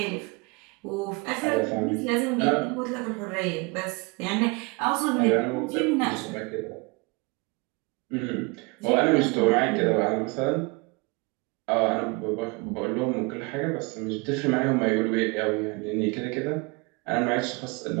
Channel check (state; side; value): quieter; left; 28.3 dB